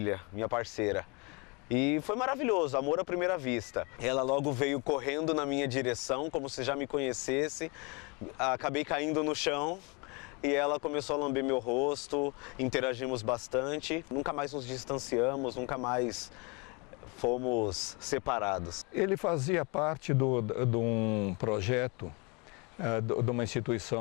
minha parceira. E foi maravilhoso, amor à primeira vista. Ela logo veio correndo na minha direção, como se já me conhecesse. Acabei caindo no chão e ela começou a lamber meu rosto, interagimos bastante. Nunca mais nos distanciamos, nunca mais fomos separados. Ele fazia parte de um projeto de uma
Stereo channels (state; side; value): quieter; right; 30.0 dB